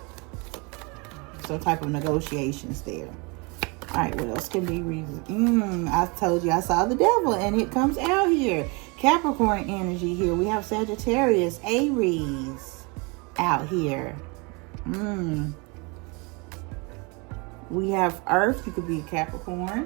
some type of negotiations there. All right, what else can be reason? I told you I saw the devil, and it comes out here. Capricorn energy here. We have Sagittarius, Aries out here. We have Earth. You could be a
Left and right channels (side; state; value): left; quieter; 29.6 dB